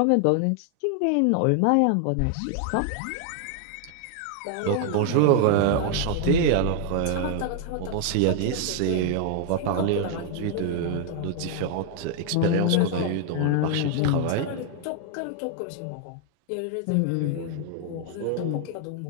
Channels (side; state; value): both; different; correlation 0.00